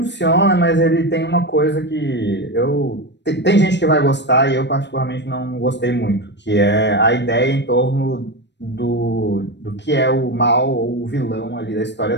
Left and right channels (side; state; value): right; late; 0.51 ms